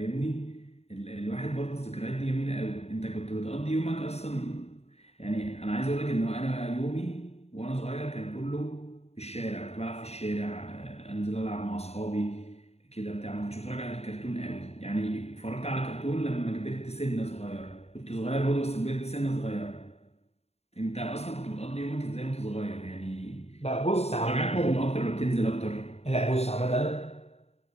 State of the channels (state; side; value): late; right; 0.30 ms